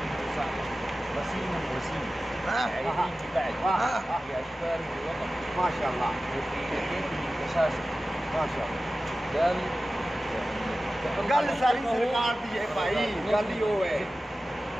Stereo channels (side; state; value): both; normal; correlation 0.95